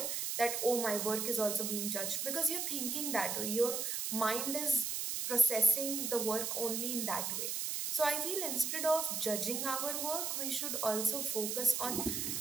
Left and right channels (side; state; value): right; noise; hiss, 1 dB below the sound